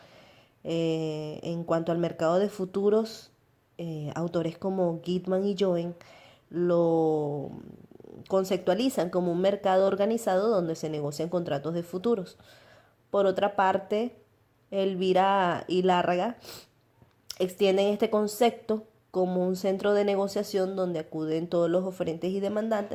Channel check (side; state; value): both; identical; correlation 1.00